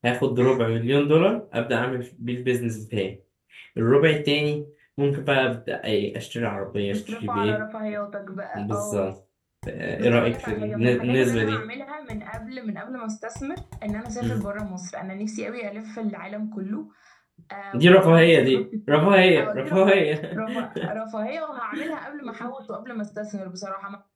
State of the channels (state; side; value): identical; both; correlation 1.00